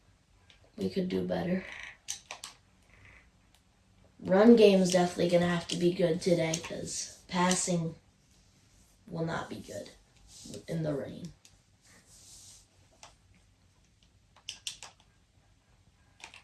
We could do better. Run game is definitely going to have to be good today because passing will not be good in the rain.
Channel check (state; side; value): identical; both; correlation 1.00